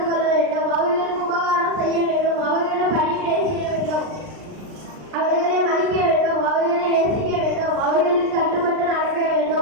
கொள்ள வேண்டும். அவர்களுக்கு உபகாரம் செய்ய வேண்டும். அவர்களும் பணிவிடை செய்ய வேண்டும். அவர்களை மதிக்க வேண்டும். அவர்களை நேசிக்க வேண்டும். அவர்களுக்கு கட்டுப்பட்டு நடக்க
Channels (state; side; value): late; left; 39 ms